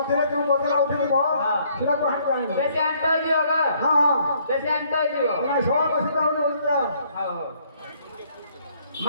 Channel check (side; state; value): both; inverted; correlation -0.65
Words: ଯେଉଁ ବଦଲା ଉଠିବ ସେଟାକୁ ହାତ ଆଣିବୁ ବେଶୀ ଆଣ୍ଟ ହେଇଯିବ ବେଶୀ ଆଣ୍ଟ ହେଇଯିବ ସବ ବସି ଯାଉନି ବୁଝିଲା